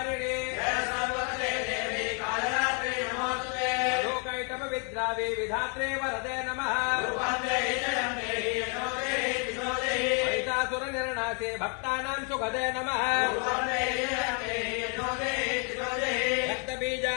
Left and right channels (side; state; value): right; quieter; 38.9 dB